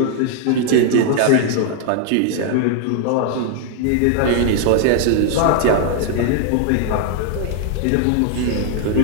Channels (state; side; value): different; both; correlation 0.00